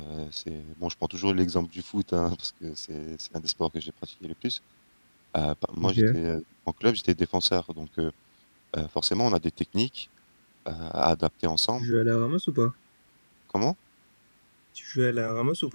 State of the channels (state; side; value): inverted; both; correlation -1.00